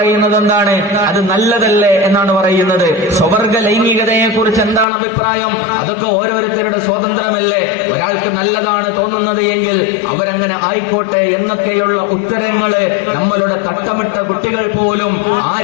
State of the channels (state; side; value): drops out; right; at 4.9 s